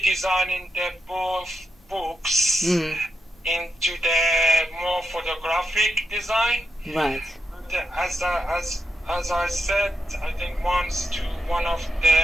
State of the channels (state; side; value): normal; both; correlation 0.85